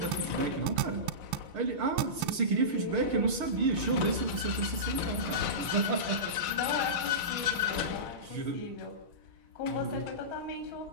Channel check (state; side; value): late; left; 6.3 ms